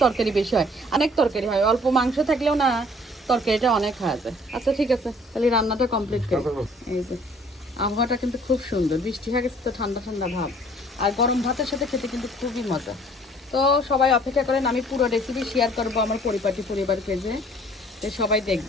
তরকারি বেশি হয়, অনেক তরকারি হয়। অল্প মাংস থাকলেও না তরকারিটা অনেক হয়ে যায়। আচ্ছা ঠিক আছে, তাহলে রান্নাটা কমপ্লিট করি। এই যে আবহাওয়াটা কিন্তু খুব সুন্দর, বৃষ্টি হয়ে গেছে তো ঠান্ডা ঠান্ডা ভাব, আর গরম ভাতের সাথে খেতে কিন্তু খুবই মজা। তো সবাই অপেক্ষা করেন, আমি পুরো রেসিপি শেয়ার করবো আমার পরিবারকে, যে সবাই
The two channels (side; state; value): both; normal; correlation 0.56